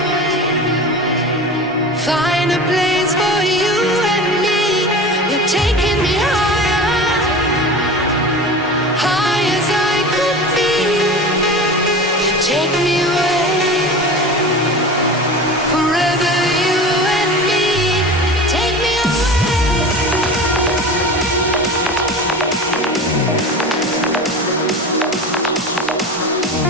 find a place for you and me. You're taking me higher, high as I could be. You take me away.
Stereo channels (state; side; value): normal; both; correlation 0.32